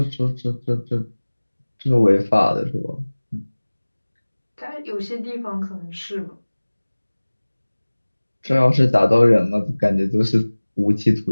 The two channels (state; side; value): inverted; both; correlation -1.00